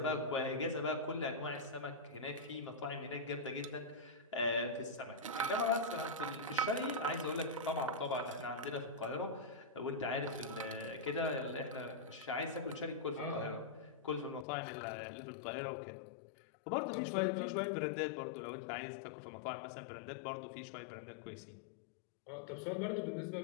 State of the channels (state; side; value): drops out; right; at 14.5 s